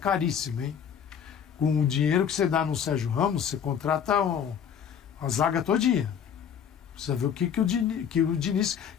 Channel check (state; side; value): quieter; right; 8.0 dB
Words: hein? Com o dinheiro que você dá no Sérgio Ramos, você contrata a zaga todinha. Precisa ver o que o Diniz...